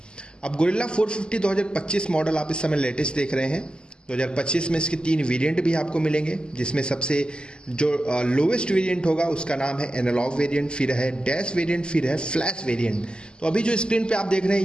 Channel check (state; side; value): late; right; 0.048 ms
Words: अब गोरिल्ला 450 2025 मॉडल आप इस समय लेटेस्ट देख रहे हैं। 2025 में इसके 3 वेरिएंट भी आपको मिलेंगे, जिसमें सबसे जो लोवेस्ट वेरिएंट होगा उसका नाम है एनालॉग वेरिएंट, फिर है डैश वेरिएंट, फिर है फ्लैश वेरिएंट। तो अभी जो स्क्रीन पे आप देख रहे